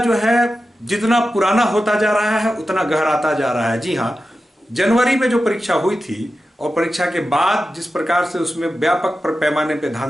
है जितना पुराना होता जा रहा है उतना गहराता जा रहा है। जी हाँ, जनवरी में जो परीक्षा हुई थी और परीक्षा के बाद जिस प्रकार से उसमें व्यापक पैमाने पर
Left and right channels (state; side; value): normal; both; correlation 0.92